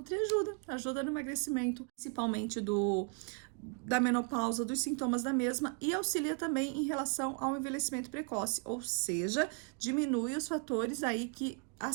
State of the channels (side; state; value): left; quieter; 33.0 dB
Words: ajuda no emagrecimento, principalmente da menopausa, dos sintomas da mesma e auxilia também em relação ao envelhecimento precoce, ou seja, diminui os fatores aí que